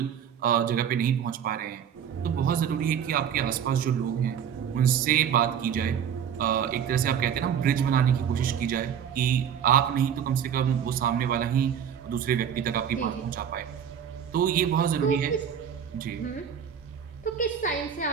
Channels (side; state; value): left; quieter; 8.4 dB